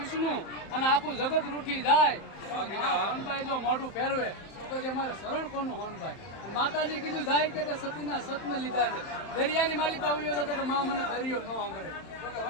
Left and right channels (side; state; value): right; late; 31 ms